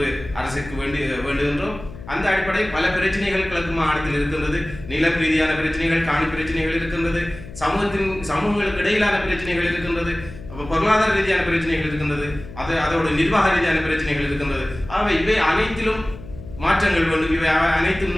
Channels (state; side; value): noise; left; hum, 15 dB below the sound